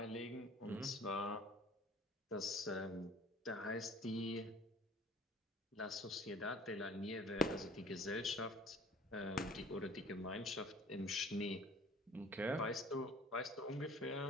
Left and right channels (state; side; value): normal; both; correlation 0.48